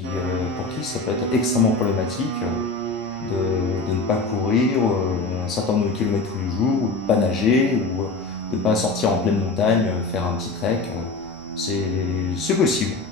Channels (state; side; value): quieter; right; 3.6 dB